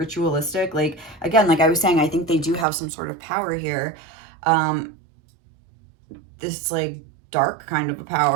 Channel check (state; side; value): drops out; left; at 2.7 s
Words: Like again, like I was saying, I think they do have some sort of power here. This like dark kind of a